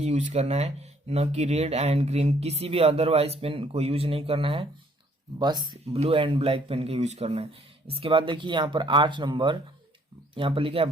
यूज करना है, न कि रेड एंड ग्रीन, किसी भी अदरवाइज पेन को यूज नहीं करना है, बस ब्लू एंड ब्लैक पेन का यूज करना है। इसके बाद देखिए यहाँ पर 8 नंबर यहाँ पर लिखा है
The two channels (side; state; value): both; normal; correlation 0.63